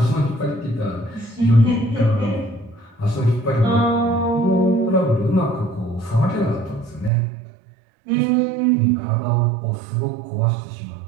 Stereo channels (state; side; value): drops out; left; at 7.1 s